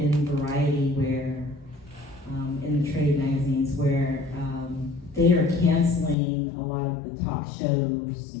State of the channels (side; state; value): right; drops out; at 6.2 s